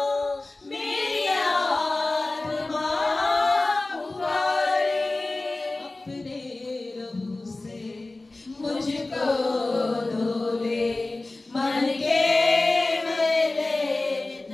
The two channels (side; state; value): right; quieter; 3.0 dB